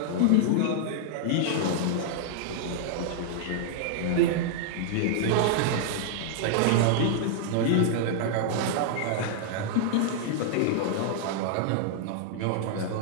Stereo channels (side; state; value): both; different; correlation -0.01